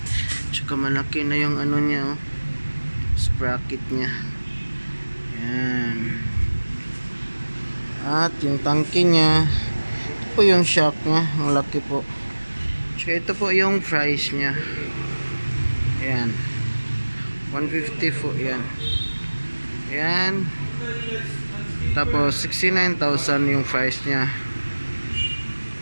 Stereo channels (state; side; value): inverted; both; correlation -1.00